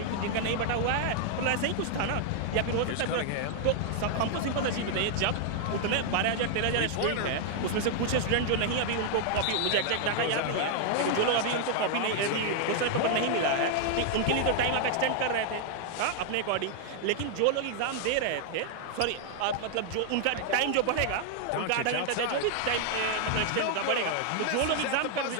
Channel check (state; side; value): different; both; correlation 0.00